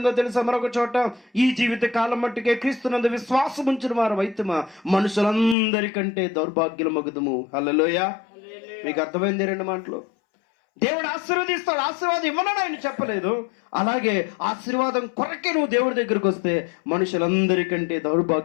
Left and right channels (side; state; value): right; drops out; at 5.6 s